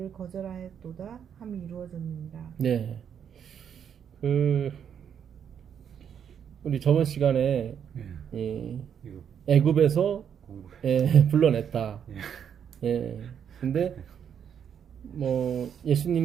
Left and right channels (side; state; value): left; quieter; 8.2 dB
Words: 거절하였도다 함이 이루어졌느니라. 네. 우리 저번 시간에 이 이거 애굽에서 공부해. 불러냈다. 예. 근데 뭐